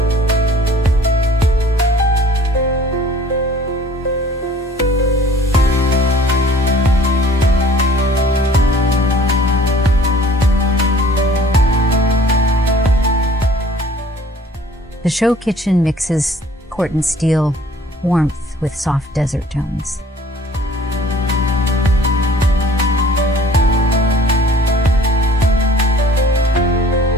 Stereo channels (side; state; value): both; normal; correlation 0.53